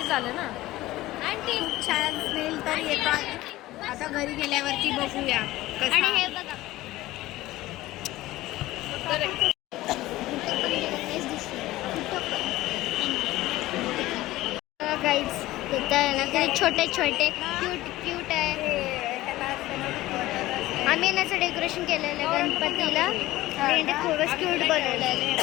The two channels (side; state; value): right; quieter; 17.1 dB